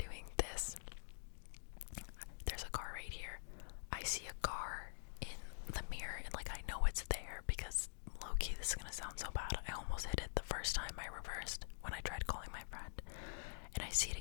this, there's a car right here. I see a car in the mirror, and like I know it's there because low-key, this is gonna sound so bad, I almost hit it the first time I reversed when I tried calling my friend. And I see it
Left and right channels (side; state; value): right; silent; digital silence